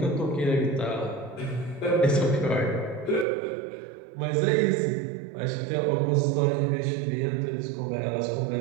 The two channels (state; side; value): drops out; left; at 3.2 s